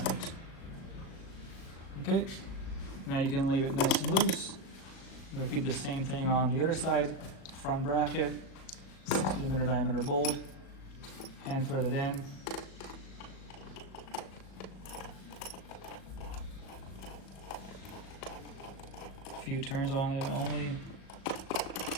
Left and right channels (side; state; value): right; late; 37 ms